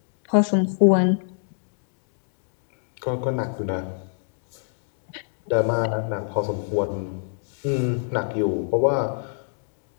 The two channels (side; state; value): right; silent; digital silence